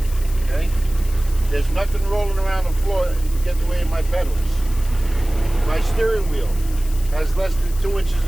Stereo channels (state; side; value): noise; left; hiss, 17 dB below the sound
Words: Okay? There's nothing rolling around the floor to get in the way of my pedals. My steering wheel has less than 2 inches